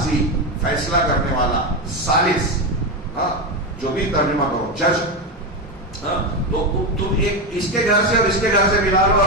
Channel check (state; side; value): normal; both; correlation 0.12